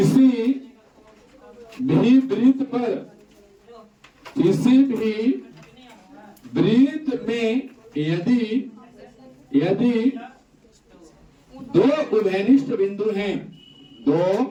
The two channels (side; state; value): both; identical; correlation 1.00